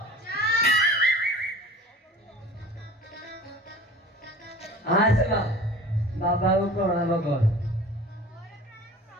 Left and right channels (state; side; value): normal; both; correlation 0.41